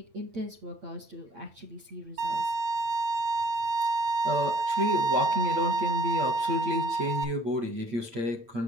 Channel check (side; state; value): left; late; 8.8 ms